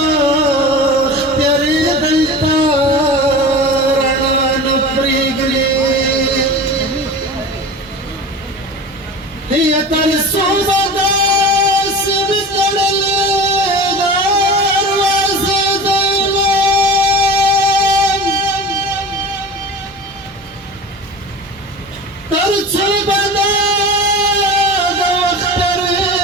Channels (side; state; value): both; normal; correlation 0.35